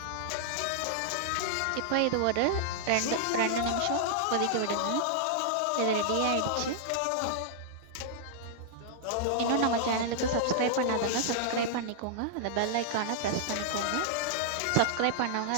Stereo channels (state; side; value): different; both; correlation -0.01